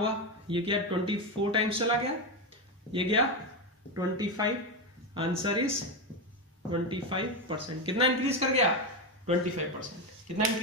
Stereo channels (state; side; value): normal; both; correlation 0.11